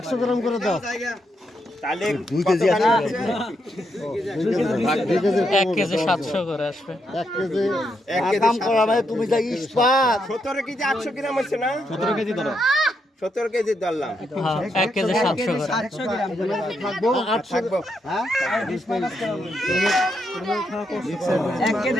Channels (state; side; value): normal; both; correlation 0.80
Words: গ্রাম করে দাও। তাহলে 2 কেজি 1 কেজি 700 করে আসবে। 1 কেজি কাম করা ভাই তুমি যা ইস্পাত 17 কেজি 800 গ্রাম হচ্ছে না? 17 কেজি ধরো। 17 কেজি ধরলাম। হ্যাঁ 1 কেজি 700 করে। থাকবো 8 থাকবো হ্যাঁ 1